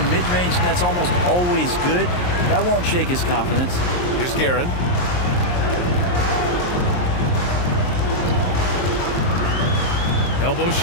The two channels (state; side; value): late; right; 23 ms